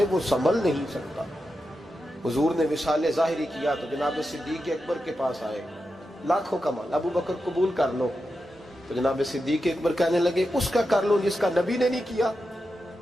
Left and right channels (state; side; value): normal; both; correlation 0.89